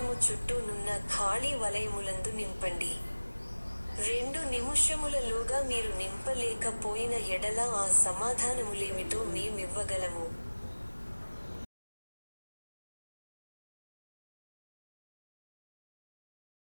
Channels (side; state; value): both; inverted; correlation -1.00